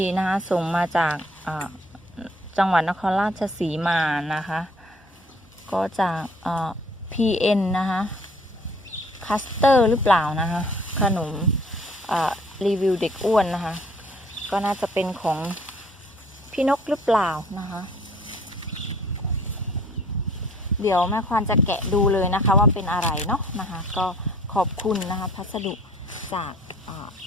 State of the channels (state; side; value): normal; both; correlation 0.56